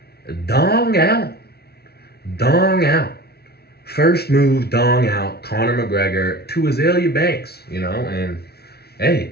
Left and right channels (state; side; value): late; right; 0.46 ms